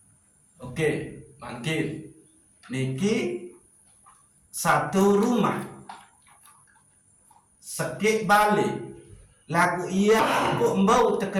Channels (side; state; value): both; identical; correlation 1.00